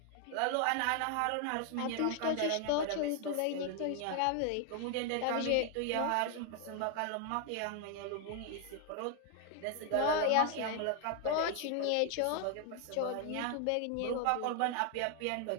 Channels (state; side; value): different; both; correlation 0.00